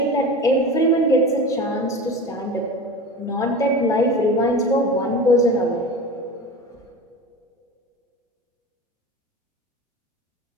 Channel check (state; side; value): normal; both; correlation 0.31